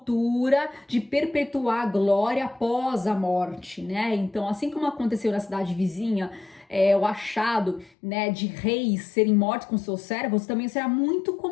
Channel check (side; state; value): right; drops out; at 7.9 s